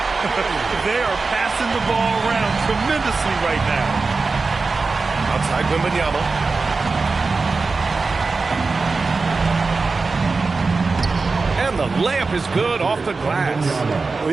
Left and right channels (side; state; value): left; quieter; 4.1 dB